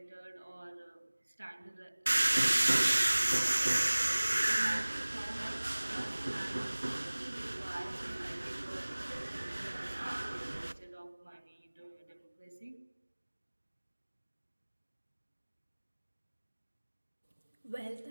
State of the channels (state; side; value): inverted; both; correlation -1.00